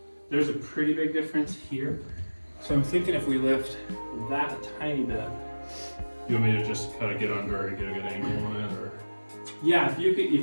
There's a pretty big difference here. So I'm thinking if we lift that a tiny bit. You want me to just kind of get under and get a good angle on it, or? Yeah, if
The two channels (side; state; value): both; inverted; correlation -1.00